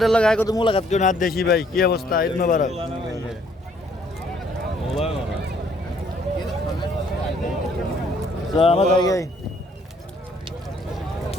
লাগায় কত মোলাকাত কেউ না দেশি ভাই, কি অবস্থা? ঈদ মুবারক। আমার জায়গায়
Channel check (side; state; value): both; normal; correlation 0.64